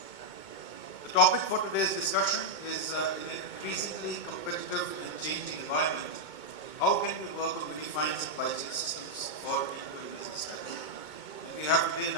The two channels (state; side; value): late; right; 2.2 ms